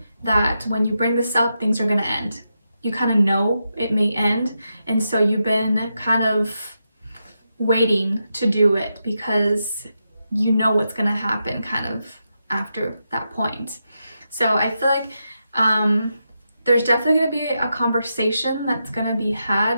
that when you bring this up, things are gonna end. You kind of know it may end, and so you've been kind of waiting to do it because you know what's gonna happen kind of after that point. So I feel like there's definitely going to be a conversation that's going to be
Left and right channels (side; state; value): both; inverted; correlation -0.86